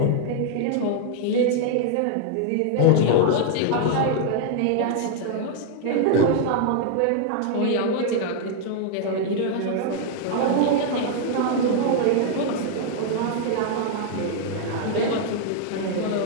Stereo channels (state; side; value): different; both; correlation 0.00